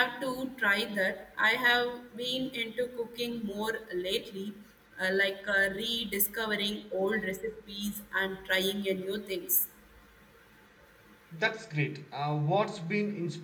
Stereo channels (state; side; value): identical; both; correlation 1.00